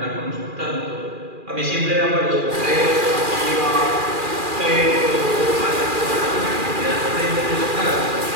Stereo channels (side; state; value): left; late; 2.4 ms